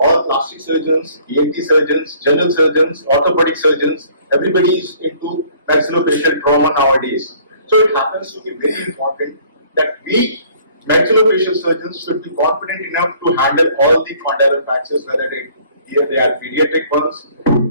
plastic surgeons, ENT surgeons, general surgeons, orthopedic surgeons, everybody is into maxillofacial trauma nowadays. So it happens to be very important that we maxillofacial surgeons should be confident enough to handle all the condylar fractures, whether they are pediatric ones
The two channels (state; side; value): inverted; both; correlation -0.57